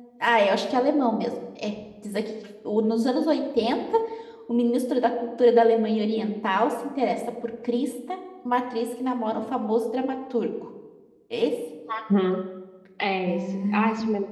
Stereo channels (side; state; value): both; identical; correlation 1.00